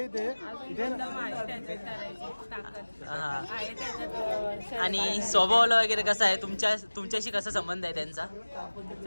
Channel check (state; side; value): inverted; both; correlation -1.00